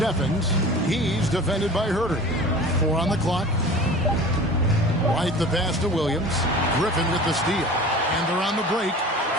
He's defended by Herder. 4 on the clock. White the pass to Williams. Griffin with the steal. And they're on the break.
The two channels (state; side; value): normal; both; correlation 0.40